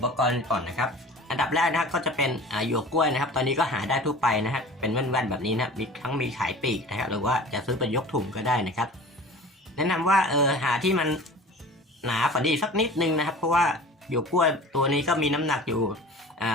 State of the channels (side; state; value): both; normal; correlation 0.40